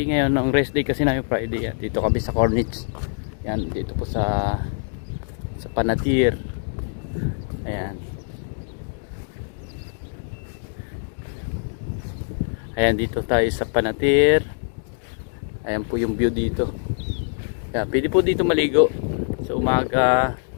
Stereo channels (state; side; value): silent; right; digital silence